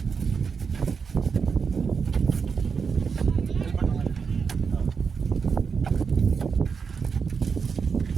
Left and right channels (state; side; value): quieter; left; 5.7 dB